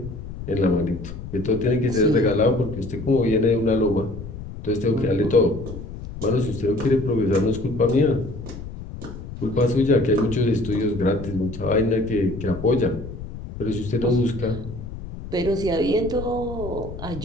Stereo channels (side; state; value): left; noise; rumble, 11 dB below the sound